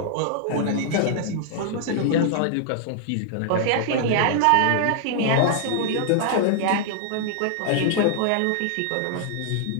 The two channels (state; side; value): different; both; correlation -0.01